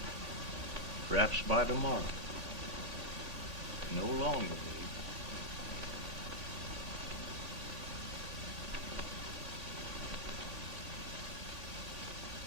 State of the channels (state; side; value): late; right; 1.8 ms